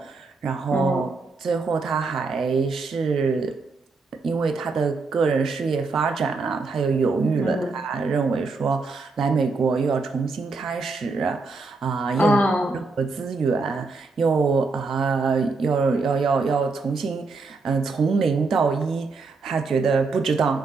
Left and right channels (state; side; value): quieter; left; 4.0 dB